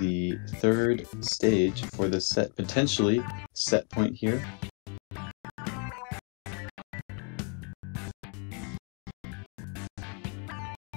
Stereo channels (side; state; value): right; quieter; 35.3 dB